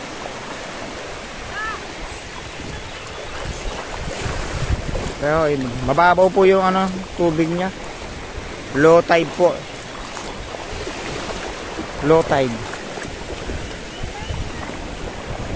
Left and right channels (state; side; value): identical; both; correlation 1.00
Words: Pero mababaw po yung tubig niya. Low tide po. Low tide.